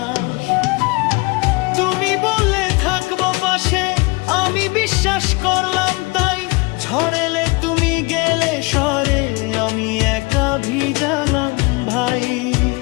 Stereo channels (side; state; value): right; quieter; 26.9 dB